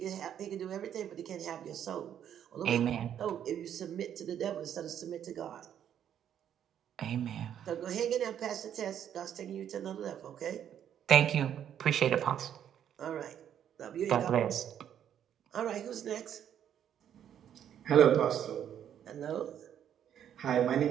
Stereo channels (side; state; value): left; quieter; 9.7 dB